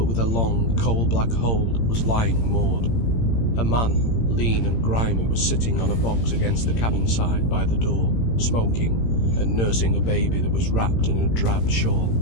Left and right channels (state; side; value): late; right; 18 ms